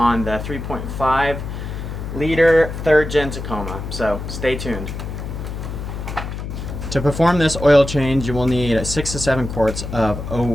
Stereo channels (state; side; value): noise; left; hum, 7 dB below the sound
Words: the 3.5 liter 3rd gen Tacoma, so stay tuned. To perform this oil change, you will need 6 to 7 quarts of